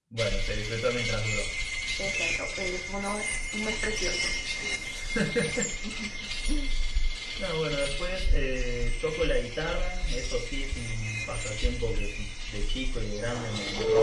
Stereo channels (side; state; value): both; identical; correlation 1.00